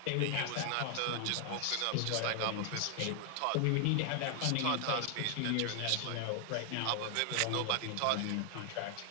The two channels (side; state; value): both; different; correlation 0.00